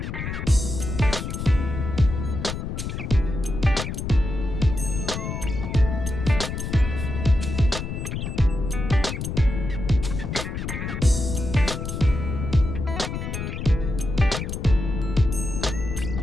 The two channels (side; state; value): left; noise; rumble, 4 dB below the sound